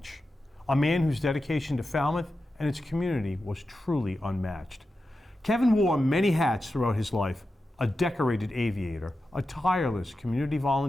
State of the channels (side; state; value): both; normal; correlation 0.91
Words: a man whose dedication to Falmouth and its community was truly unmatched. Kevin wore many hats throughout his life: a decorated aviator, a tireless community